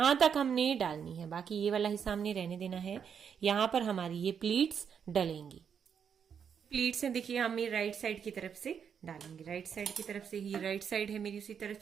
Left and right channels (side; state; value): left; quieter; 7.4 dB